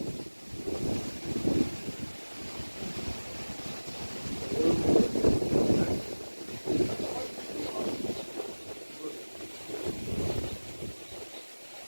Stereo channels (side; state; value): both; inverted; correlation -1.00